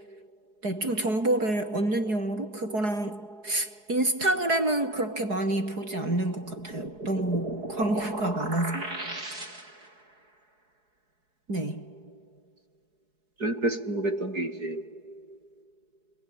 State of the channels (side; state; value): left; late; 4.7 ms